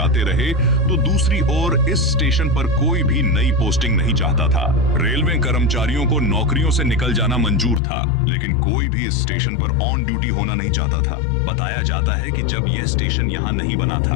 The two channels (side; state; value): right; drops out; at 7.8 s